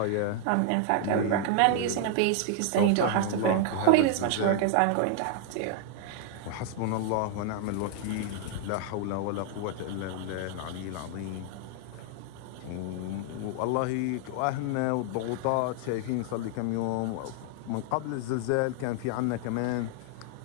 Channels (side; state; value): both; different; correlation 0.00